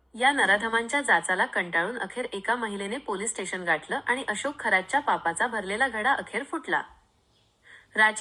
या नराधमांच्या जाचाला कंटाळून अखेर एका महिलेने पोलीस स्टेशन गाठलं आणि अशोक खरातच्या पापाचा भरलेला घडा अखेर फुटला.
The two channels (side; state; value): both; identical; correlation 1.00